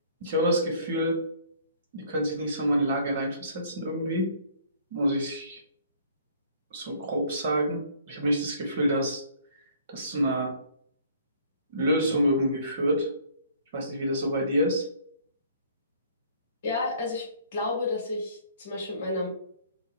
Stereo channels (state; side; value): inverted; both; correlation -0.58